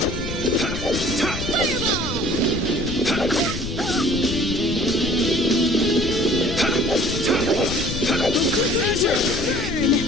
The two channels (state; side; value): noise; left; rumble, 7 dB below the sound